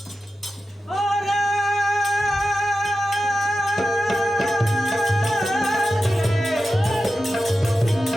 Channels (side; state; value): both; normal; correlation 0.92